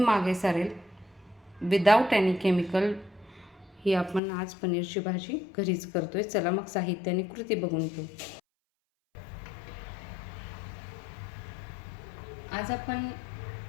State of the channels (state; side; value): drops out; right; at 4.2 s